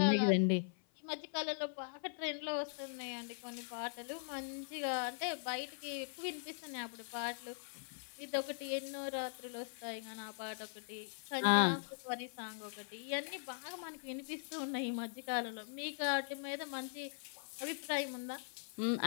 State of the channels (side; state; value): right; silent; 50 dB below the other